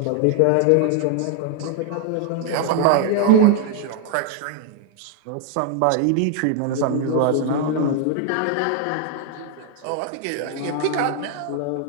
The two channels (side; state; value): both; different; correlation 0.00